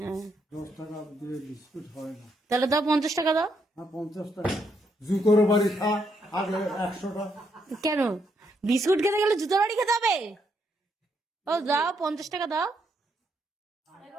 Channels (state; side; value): normal; both; correlation 0.76